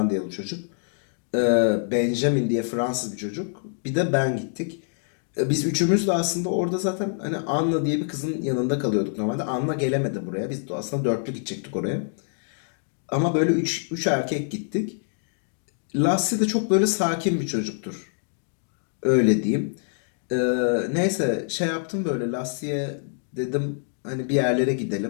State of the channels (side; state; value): right; silent; digital silence